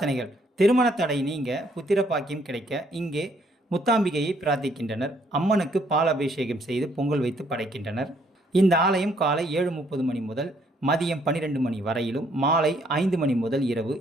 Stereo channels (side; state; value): both; normal; correlation 0.67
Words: திருமண தடை நீங்க புத்திர பாக்கியம் கிடைக்க இங்கே முத்தாம்பிகையை பிரார்த்திக்கின்றனர். அம்மனுக்கு பால் அபிஷேகம் செய்து பொங்கல் வைத்து படைக்கின்றனர். இந்த ஆலயம் காலை 7:30 மணி முதல் மதியம் 12 மணி வரையிலும், மாலை 5 மணி முதல் இரவு